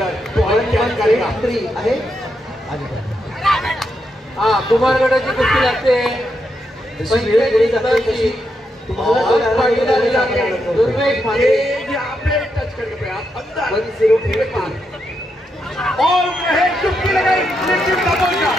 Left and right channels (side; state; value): both; normal; correlation 0.83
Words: तो क्या करेगा. 1183 आहे. हा कुमार गटाची कुस्ती लागते. टच करके अंदर 1083 और चुटकी लगाई लेकिन